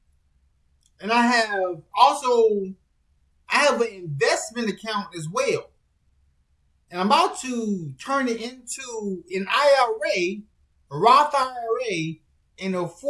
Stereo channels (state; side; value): identical; both; correlation 1.00